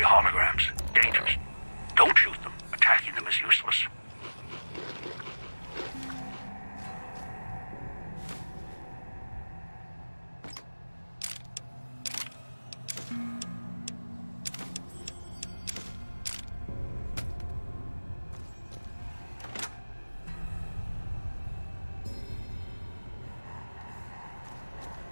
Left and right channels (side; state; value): both; inverted; correlation -1.00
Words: Dangerous. Don't shoot them. Attacking them is useless.